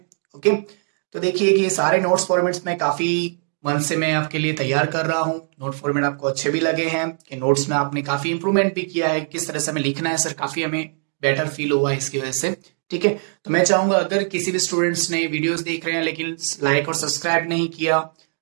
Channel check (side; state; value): left; silent; 64 dB below the other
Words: ओके, तो देखिए कि ये सारे नोट्स फॉर्मेट्स में काफी मन से मैं आपके लिए तैयार कर रहा हूँ। नोट फॉर्मेट आपको अच्छे भी लगे हैं कि नोट्स में आपने काफी इंप्रूवमेंट भी किया है, किस तरह से हमें लिखना है सर, काफी हमें बेटर फील हुआ है इसकी वजह से। ठीक है, तो मैं चाहूंगा अगर किसी भी स्टूडेंट्स ने वीडियोस देख रहे हैं लेकिन लाइक और सब्सक्राइब नहीं किया